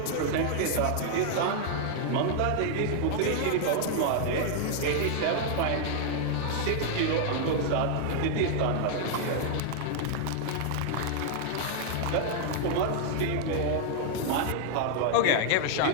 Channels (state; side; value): different; both; correlation -0.01